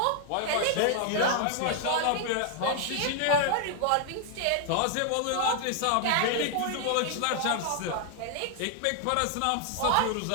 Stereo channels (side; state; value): both; different; correlation 0.00